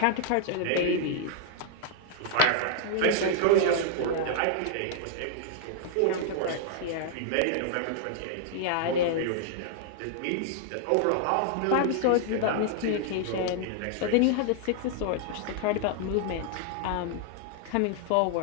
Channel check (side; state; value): both; different; correlation -0.01